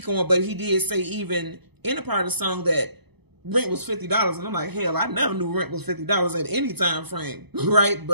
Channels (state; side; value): late; left; 0.99 ms